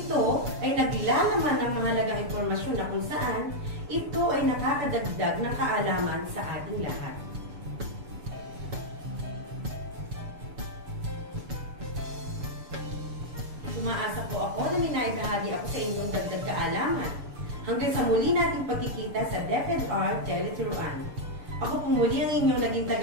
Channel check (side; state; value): left; late; 6.9 ms